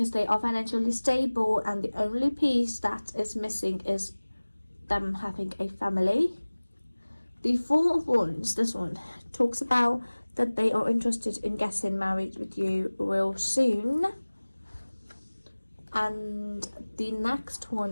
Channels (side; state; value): both; inverted; correlation -1.00